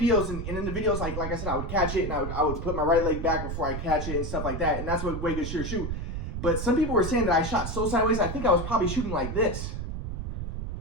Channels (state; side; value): noise; right; rumble, 4 dB below the sound